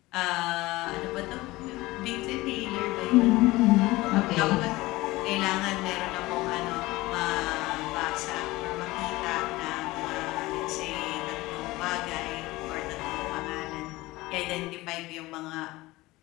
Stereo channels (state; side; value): quieter; right; 19.7 dB